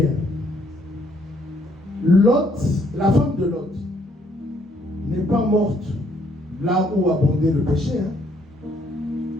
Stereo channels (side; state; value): both; normal; correlation 0.67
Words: Lot, la femme de Lot, n'est pas morte là où abondait le péché.